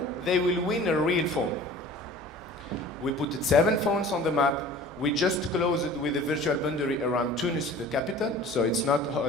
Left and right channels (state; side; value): normal; both; correlation 0.44